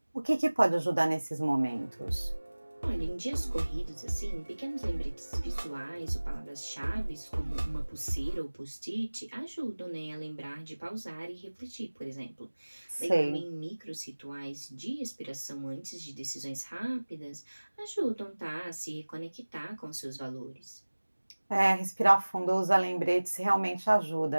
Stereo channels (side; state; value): both; inverted; correlation -1.00